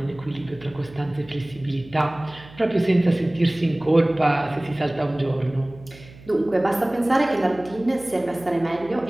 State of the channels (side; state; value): right; noise; hum, 21 dB below the sound